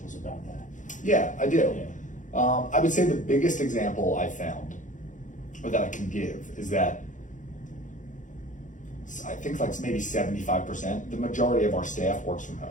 about that? Yeah, I do. Yeah. I would say the biggest example I found, or that I can give, is that I think like maybe 75%, the majority of our staff works from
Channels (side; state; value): right; late; 0.37 ms